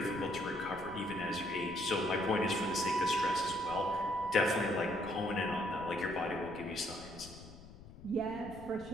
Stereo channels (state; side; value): noise; left; rumble, 17 dB below the sound